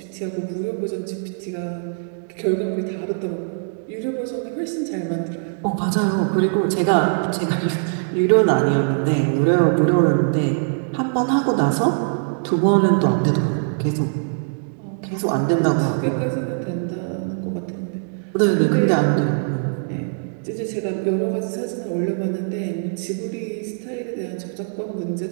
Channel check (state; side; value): silent; left; digital silence